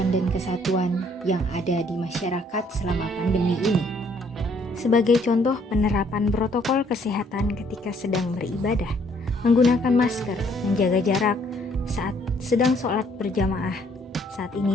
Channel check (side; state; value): both; normal; correlation 0.65